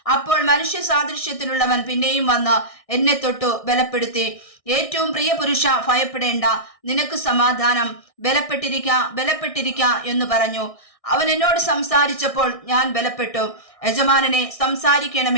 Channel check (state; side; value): late; right; 1.6 ms